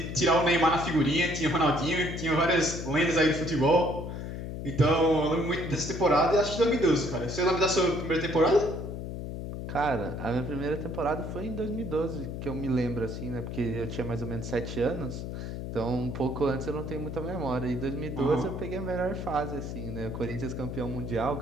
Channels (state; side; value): noise; left; hum, 6 dB below the sound